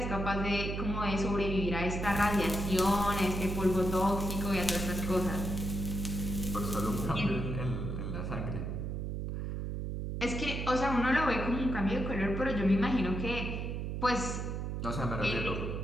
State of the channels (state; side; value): noise; right; hum, 3 dB below the sound